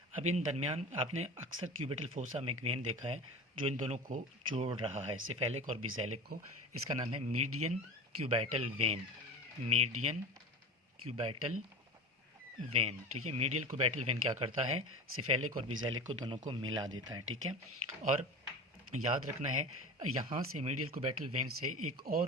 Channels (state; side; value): normal; both; correlation 0.31